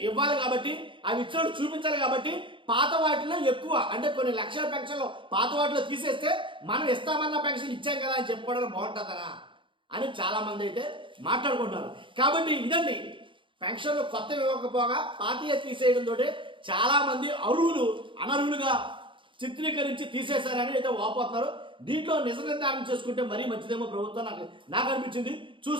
ఇవ్వాలి కాబట్టి అవి ఇచ్చినట్టు చూపించాలి కాబట్టి పాత వాటిలో ఎక్కువ అంటే కొన్ని లక్షల పెన్షన్లు పాత వాటిలో తీసేస్తే మనం ఇస్తామన్న పెన్షన్ ఇచ్చాం కదా అని చెప్పుకోవడం బాగుంటుందనా అని చాలా మంది అయితే మాట్లాడుకుంటున్నారు. కాబట్టి ఇదండి పెన్షన్లు కొత్త ఇవ్వకపోగా పాతీయ తీసేయడంతో చాలా మంది అర్హులు అనర్హులుగా చిత్రీకరించి తీసేశారని అయితే వాపోతున్నారు. దీంట్లో నిజ నిర్ధారణ చేసుకుంటే మరీ మంచిదేమో ప్రభుత్వం నాకు అనిపించింది.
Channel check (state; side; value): late; left; 0.24 ms